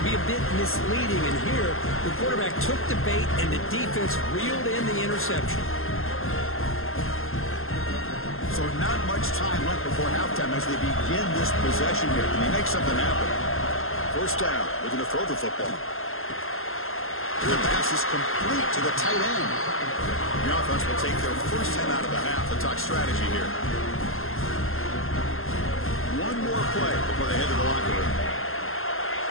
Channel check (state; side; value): late; right; 0.61 ms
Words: be a bit misleading. And here, the quarterback took the bait, and the defense reeled in the interception. So not much time left before halftime as they begin this possession here. Can they make something happen? First down, looking to throw the football. The pass is complete to the tight end. The offense will take their first 10 out of the half. They'll talk strategy here. One more play before they head to the locker room.